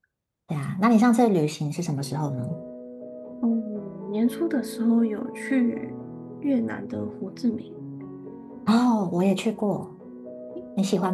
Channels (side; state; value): both; identical; correlation 1.00